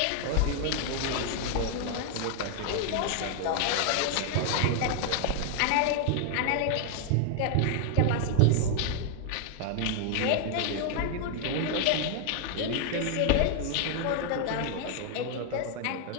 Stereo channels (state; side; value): different; both; correlation 0.00